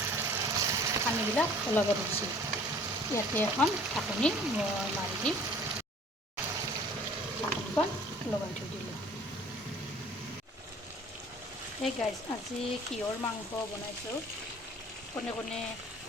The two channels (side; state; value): both; normal; correlation 0.51